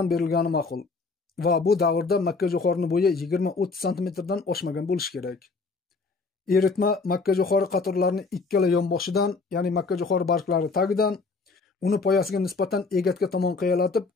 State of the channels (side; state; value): right; quieter; 4.1 dB